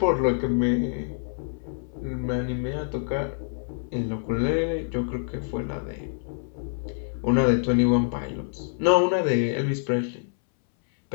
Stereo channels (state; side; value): silent; right; 61 dB below the other